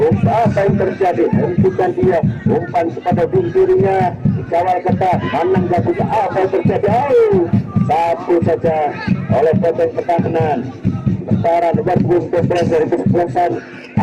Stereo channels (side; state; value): both; identical; correlation 1.00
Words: Apa yang terjadi? Hentikan dia, umpan kepada bintirinya, dikawal ketat, Manang Gabuka. Apa yang terjadi? Satu saja oleh potong pertahanan. Sementara nomor punggung 12 dari kesebelasan